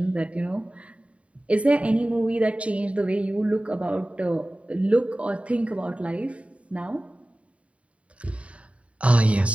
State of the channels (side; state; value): left; late; 0.063 ms